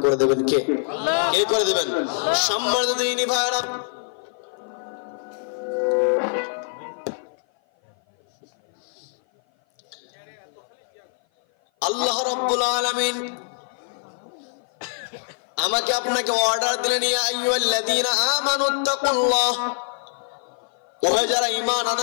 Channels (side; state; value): right; silent; 56 dB below the other